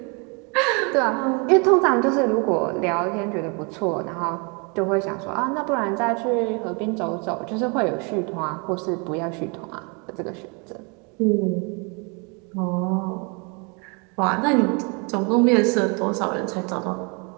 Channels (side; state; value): left; quieter; 32.7 dB